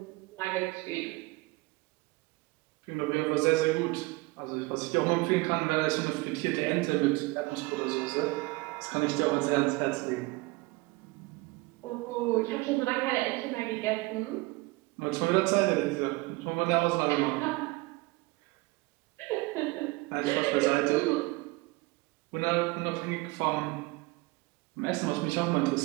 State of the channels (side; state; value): left; quieter; 23.2 dB